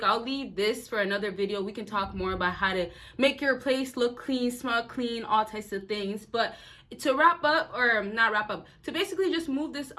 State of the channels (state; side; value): identical; both; correlation 1.00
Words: I'll leave this for another video. We can talk more about how to make your place look clean, smell clean, all types of things. But to wrap up, or not wrap up, to basically just move this